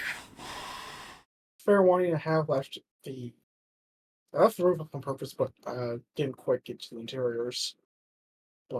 Fair warning, I have left the roof up on purpose, but didn't quite get to the interiors.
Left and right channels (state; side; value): identical; both; correlation 1.00